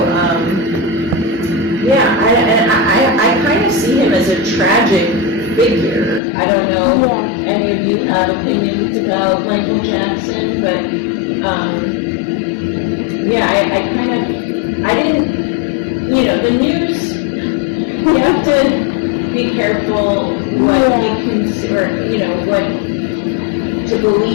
I kind of see him as a tragic figure. I don't know if any of you have opinions about Michael Jackson, but I didn't, the news you have to be careful what you consider, you know, what to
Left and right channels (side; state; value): right; drops out; at 6.2 s